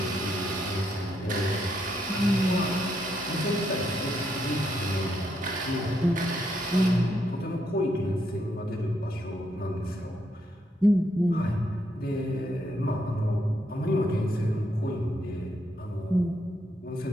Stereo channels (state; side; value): normal; both; correlation 0.77